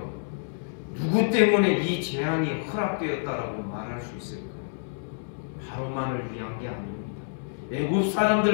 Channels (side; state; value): right; silent; 60 dB below the other